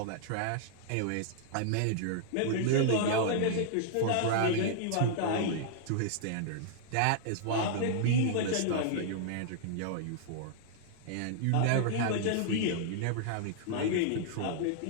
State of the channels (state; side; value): different; both; correlation -0.01